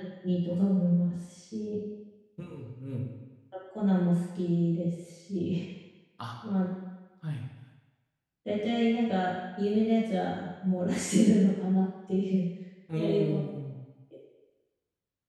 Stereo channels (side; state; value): both; identical; correlation 1.00